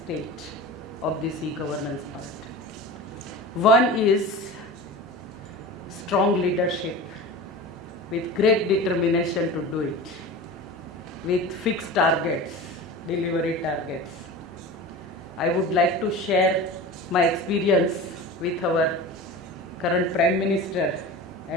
state of this e-governance part. One is strong leadership with great determination to do it, with fixed targets, delivery targets. I would like to share my experience with our current Prime Minister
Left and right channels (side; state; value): both; normal; correlation 0.32